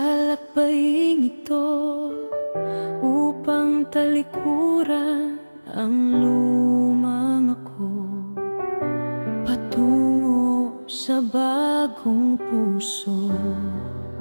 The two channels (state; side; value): inverted; both; correlation -1.00